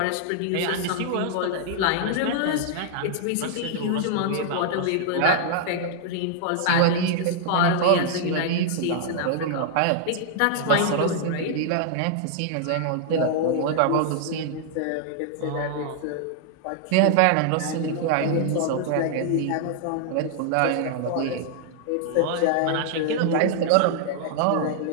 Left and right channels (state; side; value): different; both; correlation -0.01